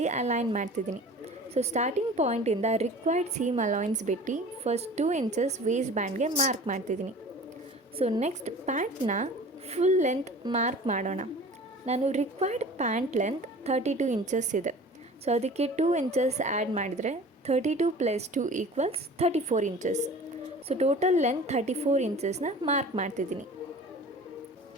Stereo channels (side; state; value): both; normal; correlation 0.42